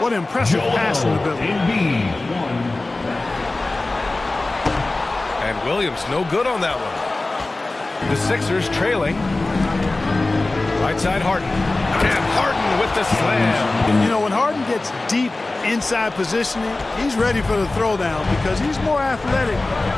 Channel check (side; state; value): right; quieter; 3.0 dB